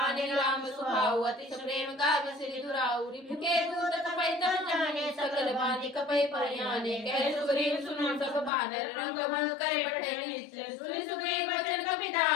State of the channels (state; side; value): drops out; right; at 8.5 s